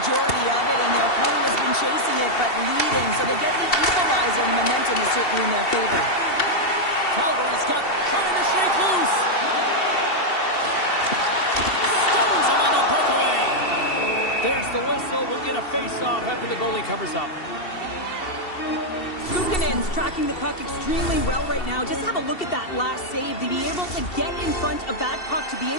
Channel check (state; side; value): late; right; 2.7 ms